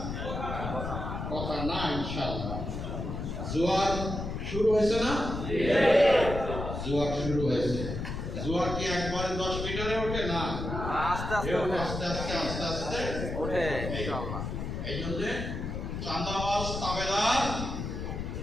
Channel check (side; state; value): left; noise; rumble, 5 dB below the sound